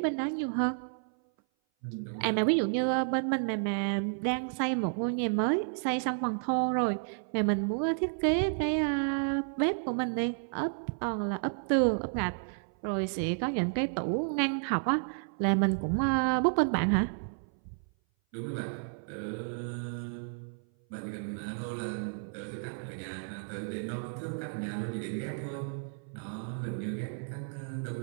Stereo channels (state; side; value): silent; left; 57 dB below the other